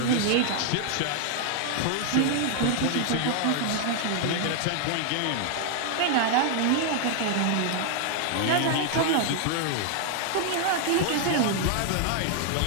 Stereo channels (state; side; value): different; both; correlation 0.00